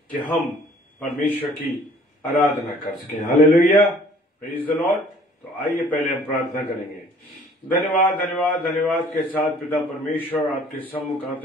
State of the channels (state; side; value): normal; both; correlation 0.54